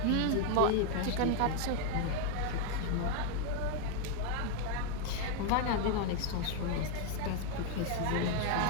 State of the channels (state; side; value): different; both; correlation 0.01